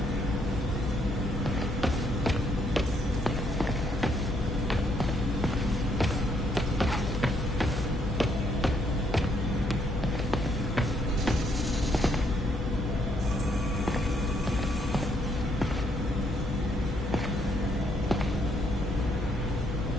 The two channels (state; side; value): noise; left; hum, 4 dB below the sound